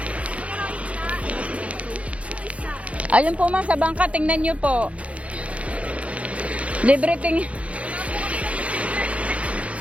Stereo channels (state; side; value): late; left; 0.064 ms